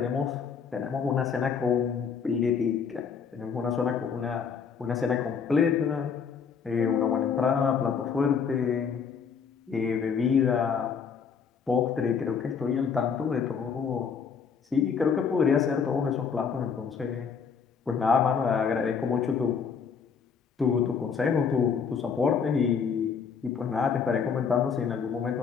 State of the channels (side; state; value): right; quieter; 6.3 dB